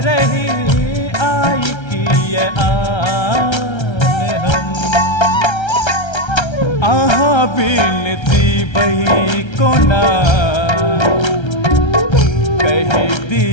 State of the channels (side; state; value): right; late; 1.3 ms